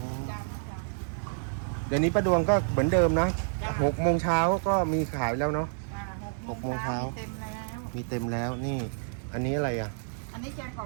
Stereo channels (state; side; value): silent; left; 58 dB below the other